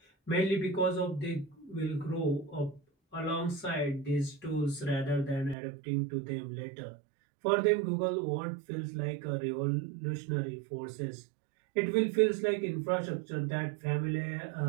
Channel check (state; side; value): drops out; left; at 5.6 s